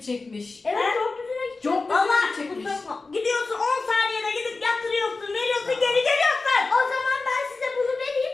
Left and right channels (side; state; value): right; quieter; 3.8 dB